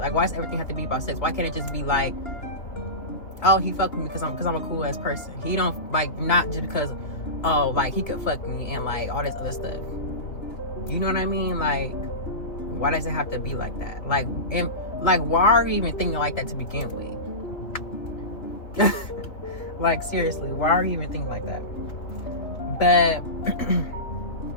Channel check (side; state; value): right; late; 2.9 ms